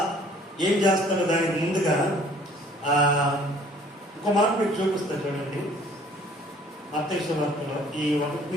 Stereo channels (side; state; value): both; normal; correlation 0.55